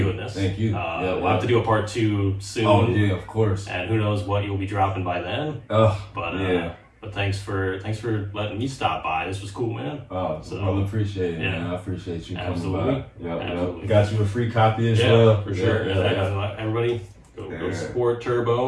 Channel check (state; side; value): identical; both; correlation 1.00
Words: this. Thank you. We'll have to do a part 2 soon. Oh yeah, of course. And who knows what you'll be dropping by then. But thanks for letting me stop by. This was cool, man. Oh, well, appreciate it, man. I appreciate you coming by. Absolutely. Got you a free copy as well. For sure. Everybody, go support